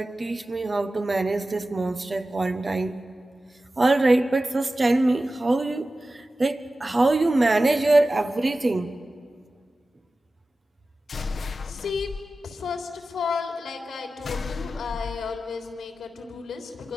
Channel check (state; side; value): normal; both; correlation 0.95